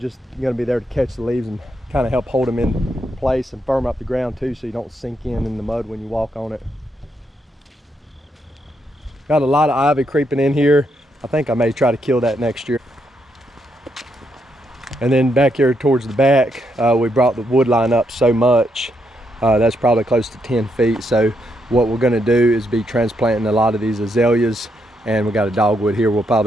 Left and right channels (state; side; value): normal; both; correlation 0.79